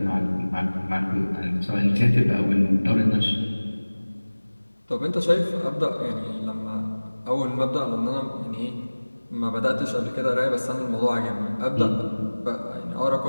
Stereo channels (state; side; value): inverted; both; correlation -1.00